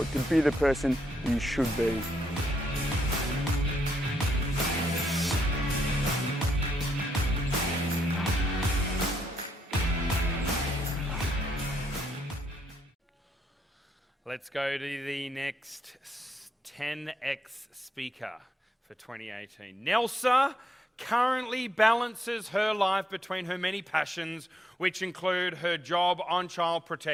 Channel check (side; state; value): both; normal; correlation 0.77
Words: to be the person you should be. Let's go to the next TENx speaker for 2018. Nelsa currently balances her life between her many passions, which include her job on child